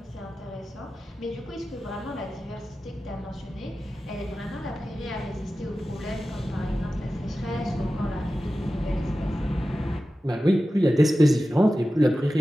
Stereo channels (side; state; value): both; normal; correlation 0.94